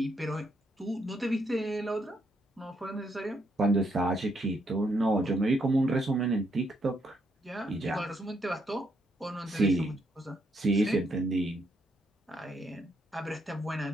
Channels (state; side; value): normal; both; correlation 0.76